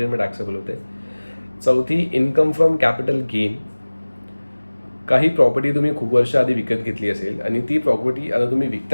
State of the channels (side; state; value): both; inverted; correlation -1.00